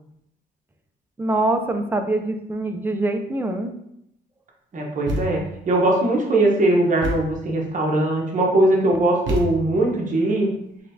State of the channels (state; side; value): normal; both; correlation 0.64